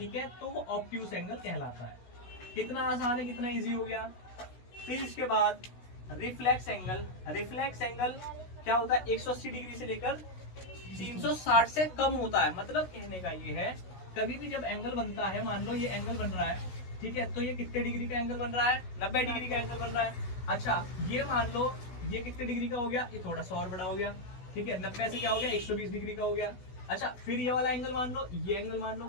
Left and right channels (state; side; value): late; right; 16 ms